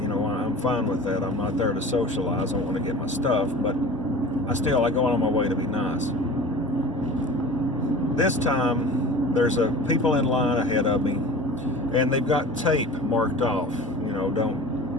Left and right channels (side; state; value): both; normal; correlation 0.37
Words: fine with that. I'm not there to socialize. I want to get my stuff, but I go out on my way to be nice. This time, there's people in line ahead of me, and they've got tape marked off,